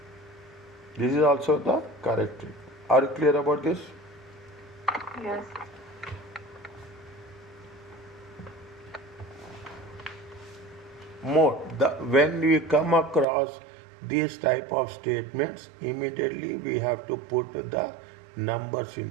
This is also the correct treatment. Are you clear about this? Yes. More, when we come across these type of statements, immediately we have to put the numbers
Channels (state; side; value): drops out; left; at 13.2 s